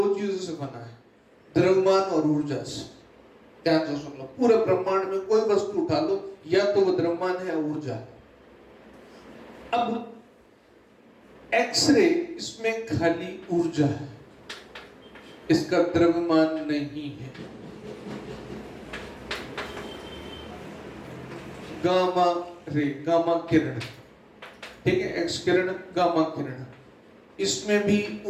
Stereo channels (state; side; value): identical; both; correlation 1.00